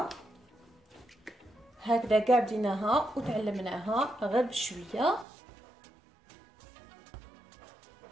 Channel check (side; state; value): left; drops out; at 5.2 s